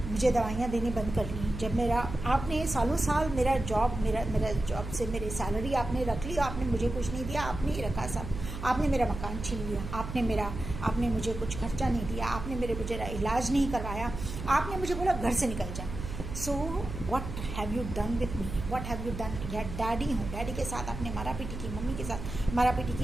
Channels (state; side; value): noise; right; hum, 8 dB below the sound